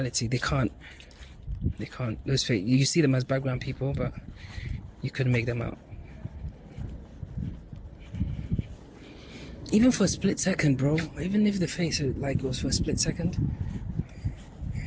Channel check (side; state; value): both; identical; correlation 1.00